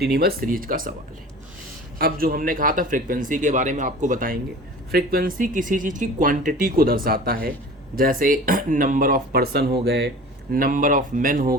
सीरीज का सवाल है। अब जो हमने कहा था फ्रीक्वेंसी के बारे में आपको बताएंगे। फ्रीक्वेंसी किसी चीज़ की क्वांटिटी को दर्शाता है, जैसे नंबर ऑफ पर्सन हो गए, नंबर ऑफ मेन हो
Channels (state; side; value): normal; both; correlation 0.40